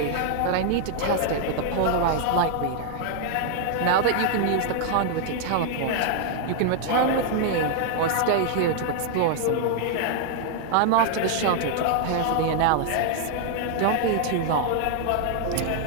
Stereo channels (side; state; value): both; different; correlation 0.00